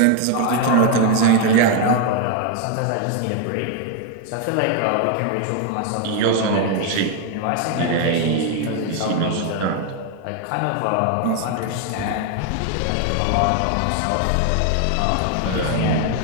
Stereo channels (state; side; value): different; both; correlation 0.01